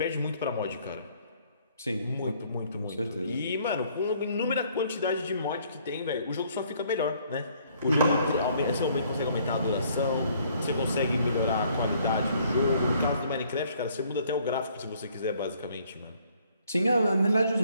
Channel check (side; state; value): both; inverted; correlation -0.63